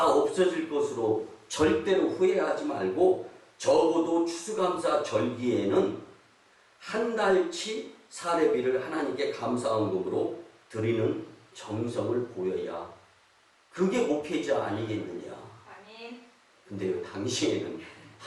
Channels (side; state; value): both; identical; correlation 1.00